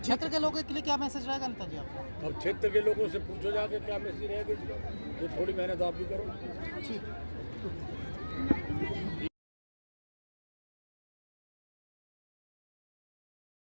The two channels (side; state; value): both; inverted; correlation -1.00